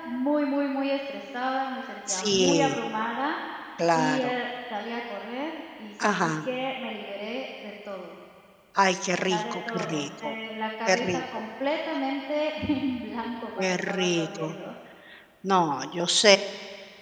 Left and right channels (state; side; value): identical; both; correlation 1.00